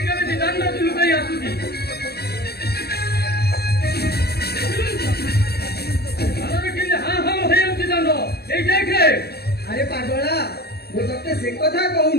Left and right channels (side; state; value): right; late; 0.47 ms